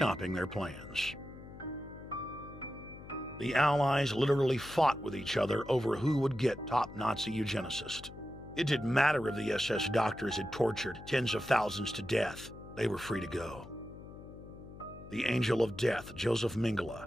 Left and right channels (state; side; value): noise; left; hum, 15 dB below the sound